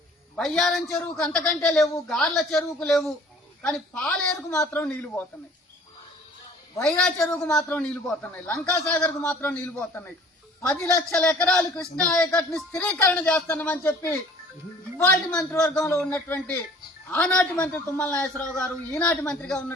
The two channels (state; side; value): normal; both; correlation 0.51